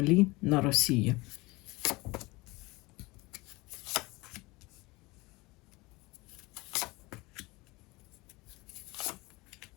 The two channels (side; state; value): right; quieter; 23.0 dB